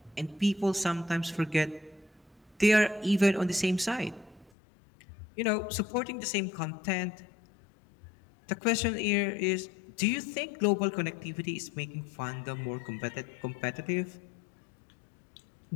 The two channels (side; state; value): right; drops out; at 4.5 s